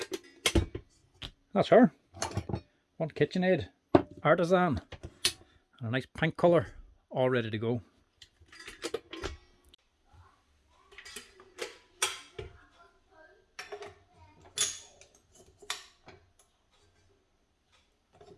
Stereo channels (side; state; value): both; identical; correlation 1.00